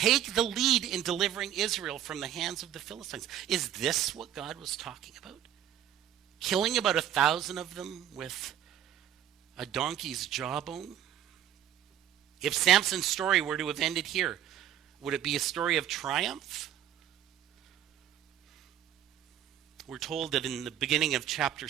the lead in delivering Israel from the hands of the Philistines. Is this what God was talking about? Killing about 1,000 of them with a donkey's jawbone? If Samson's story were to have ended here, would it be a story of triumph? We're told that in the beginning of chapter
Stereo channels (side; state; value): left; quieter; 10.7 dB